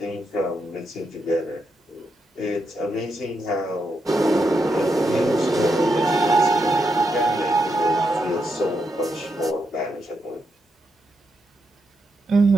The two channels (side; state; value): both; normal; correlation 0.82